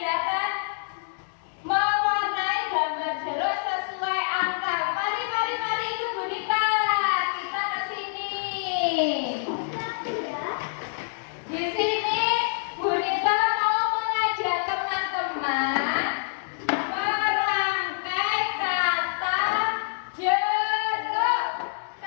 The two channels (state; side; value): silent; right; digital silence